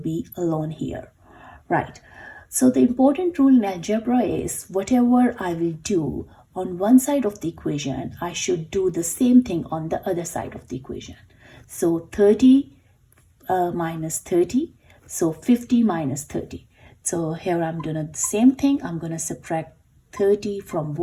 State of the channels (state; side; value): identical; both; correlation 1.00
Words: alone here. Right. So the important rule in algebra is whatever I will do on one side of the equation, I should do the same thing on the other side of the equation. So 30 minus 30. So 50 minus 30. So here I'm doing the same thing. I'm going to subtract 30 from